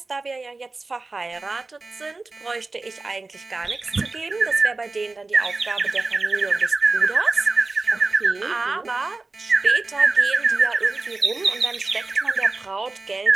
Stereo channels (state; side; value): quieter; left; 3.5 dB